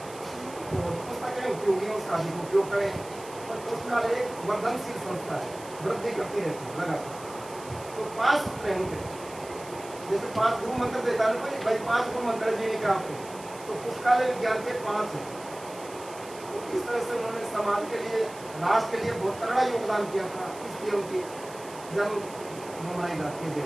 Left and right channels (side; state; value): right; noise; hiss, 18 dB below the sound